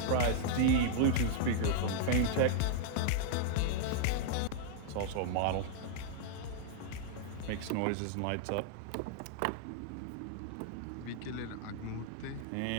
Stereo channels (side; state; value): both; different; correlation -0.01